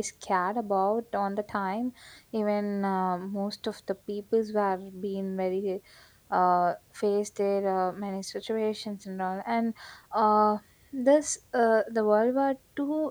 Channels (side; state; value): both; identical; correlation 1.00